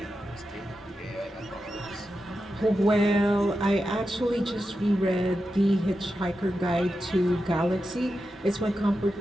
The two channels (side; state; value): both; normal; correlation 0.90